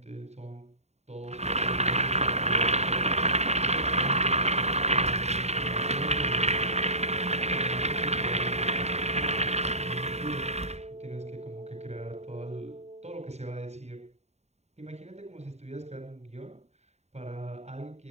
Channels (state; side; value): late; left; 0.32 ms